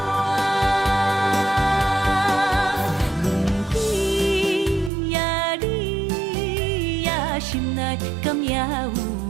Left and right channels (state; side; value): drops out; left; at 4.9 s